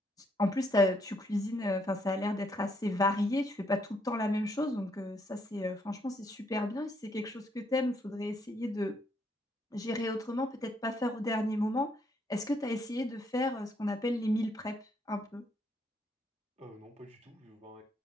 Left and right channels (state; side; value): normal; both; correlation 0.72